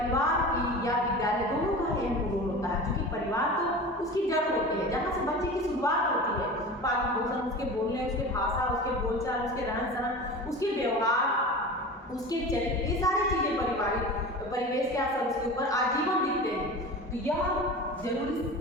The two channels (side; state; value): both; normal; correlation 0.33